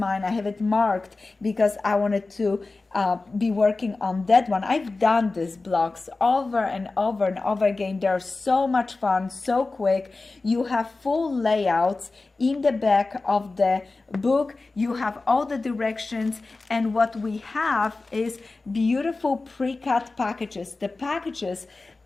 I have it marked because I wanted to be working on that one. I've done these blocks over and over and over again. They're so much fun, so quick. You have full layouts in the back of the book. You have all the directions, and what we have is beautiful pre-cut packages. The packages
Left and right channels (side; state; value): right; quieter; 3.5 dB